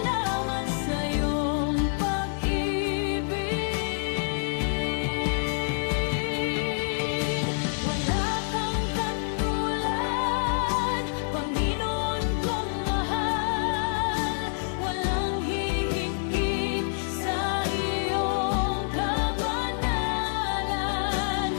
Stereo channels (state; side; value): silent; right; digital silence